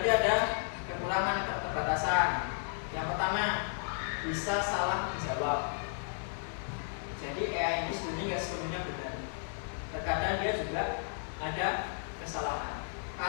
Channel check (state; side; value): silent; right; 55 dB below the other